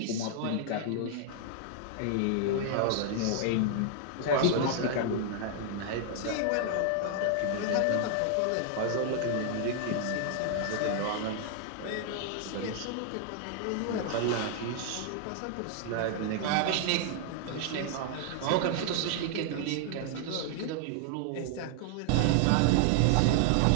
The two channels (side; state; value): both; different; correlation 0.00